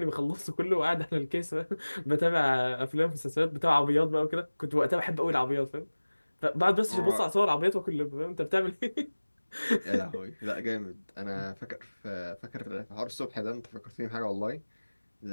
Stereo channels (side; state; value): both; inverted; correlation -1.00